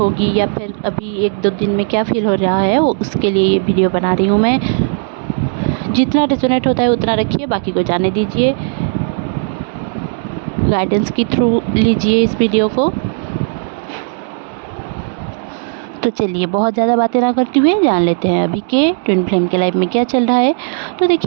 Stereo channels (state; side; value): silent; left; 64 dB below the other